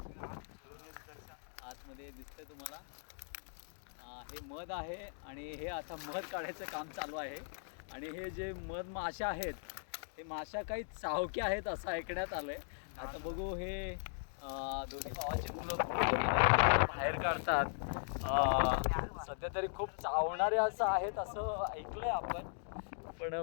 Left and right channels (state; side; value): silent; right; digital silence